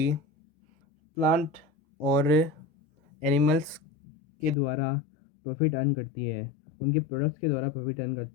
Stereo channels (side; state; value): right; drops out; at 4.5 s